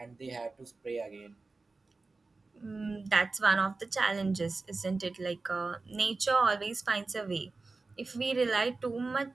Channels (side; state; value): left; quieter; 3.7 dB